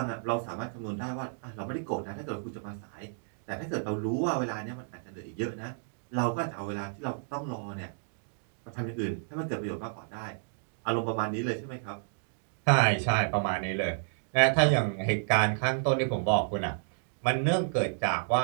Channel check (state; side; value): silent; left; digital silence